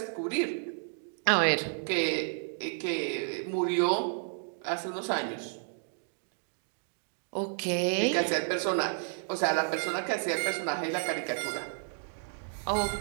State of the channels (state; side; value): silent; left; digital silence